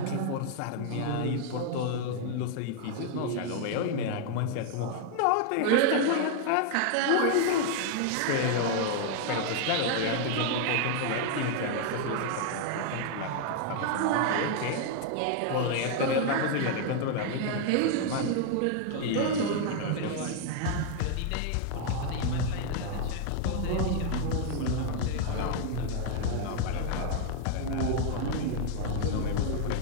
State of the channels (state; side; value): different; both; correlation 0.00